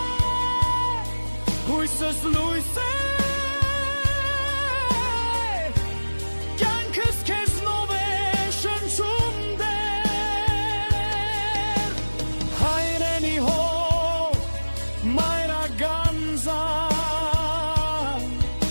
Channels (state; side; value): inverted; both; correlation -1.00